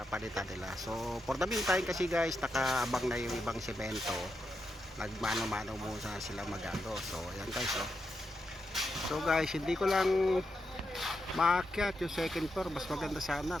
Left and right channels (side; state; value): both; normal; correlation 0.85